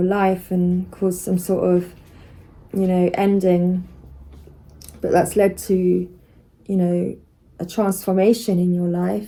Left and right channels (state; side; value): identical; both; correlation 1.00